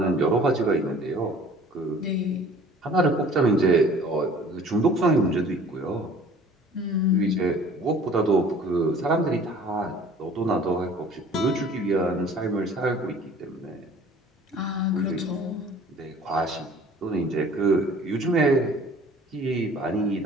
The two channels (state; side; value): normal; both; correlation 0.49